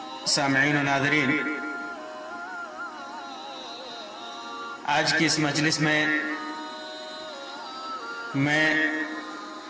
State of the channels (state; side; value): identical; both; correlation 1.00